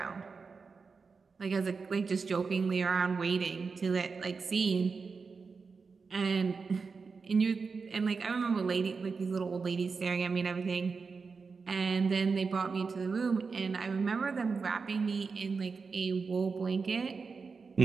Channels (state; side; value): quieter; left; 4.9 dB